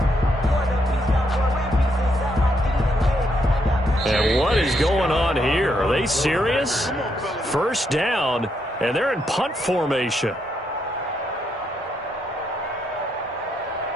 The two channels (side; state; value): both; normal; correlation 0.77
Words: And what is going on here? Are they serious? First down, and they're in punt formation.